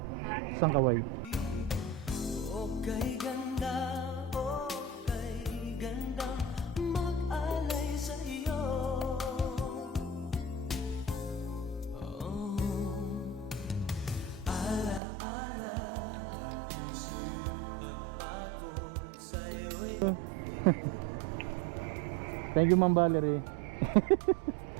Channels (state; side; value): drops out; left; at 15.0 s